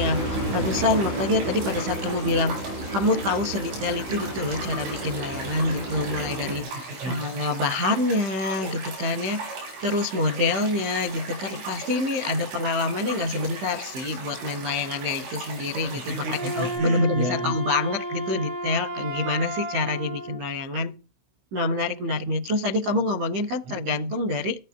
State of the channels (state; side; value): late; left; 16 ms